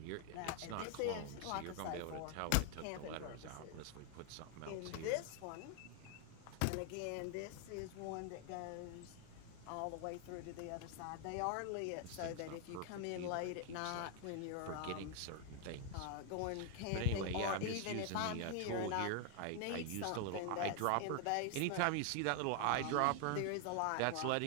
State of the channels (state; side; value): different; both; correlation 0.00